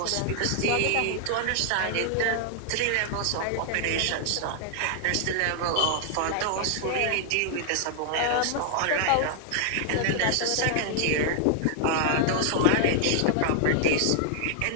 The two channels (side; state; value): both; different; correlation -0.01